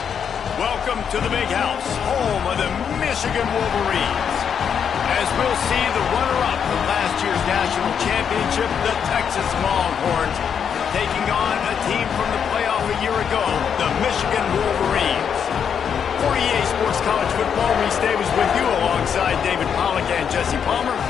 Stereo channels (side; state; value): right; quieter; 7.5 dB